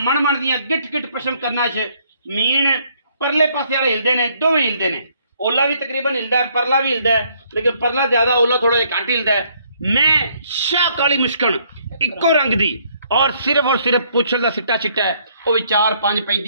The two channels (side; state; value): both; inverted; correlation -0.67